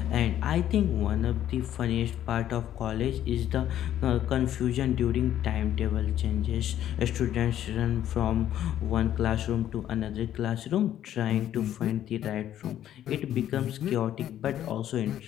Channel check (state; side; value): quieter; right; 11.5 dB